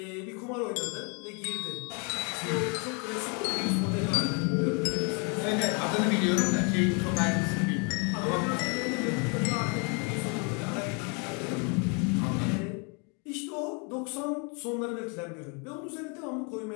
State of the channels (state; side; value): quieter; right; 34.9 dB